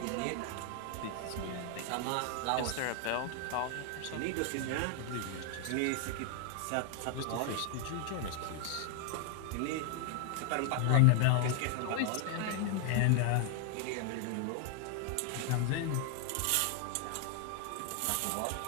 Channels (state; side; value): different; both; correlation 0.00